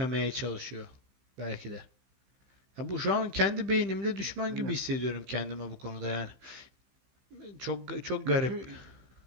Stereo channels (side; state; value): left; late; 15 ms